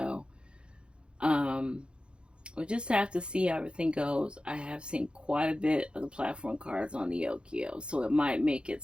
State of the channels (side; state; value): left; late; 0.055 ms